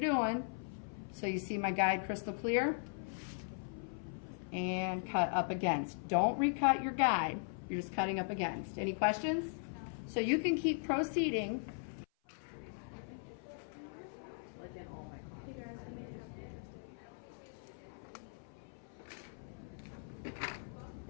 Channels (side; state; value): right; silent; 52 dB below the other